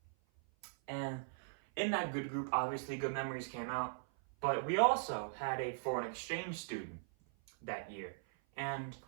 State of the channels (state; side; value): silent; left; 51 dB below the other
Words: And in that good group, obviously, good memories came out. But we also had a foreign exchange student that year. And